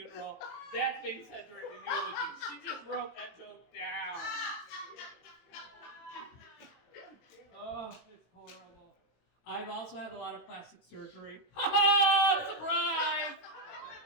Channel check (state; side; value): late; right; 18 ms